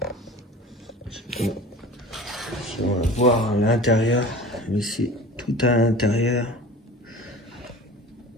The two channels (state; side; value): normal; both; correlation 0.39